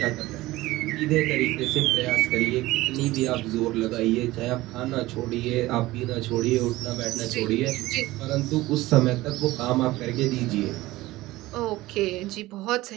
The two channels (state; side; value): quieter; left; 18.1 dB